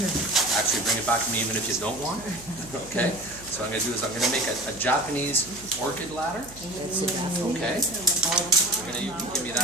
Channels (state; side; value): noise; right; hum, 19 dB below the sound